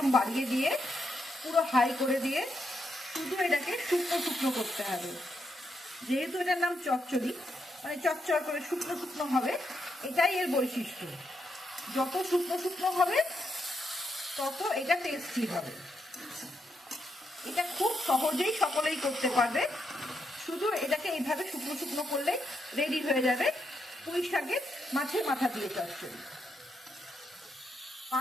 বাড়িয়ে দিয়ে পুরো হাই করে দিয়ে শুধু এটাকে শুকনো শুকনো করতে হবে। যেহেতু এটার নাম চচ্চড়ি, মানে চচ্চড় করে শুকনো শুকনো হবে, এটাই এর বৈশিষ্ট্য। যত শুকনো শুকনো হবে তত এটা টেস্টি হবে। এটা খুব সহজেই সকলেই করতে পারবে। শুধু এটাকে এইভাবে শুকনো শুকনো করলে রেডি হয়ে যাবে পুঁই শাকের মাছের মাথা দিয়ে চচ্চড়ি।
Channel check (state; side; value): normal; both; correlation 0.81